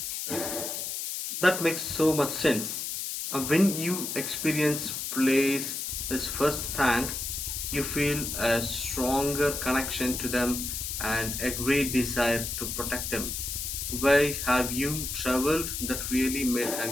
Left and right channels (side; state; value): left; noise; hiss, 4 dB below the sound